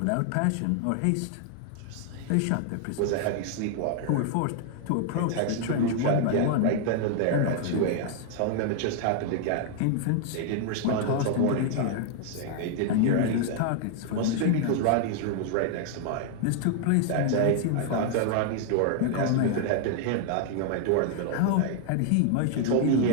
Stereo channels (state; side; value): different; both; correlation 0.00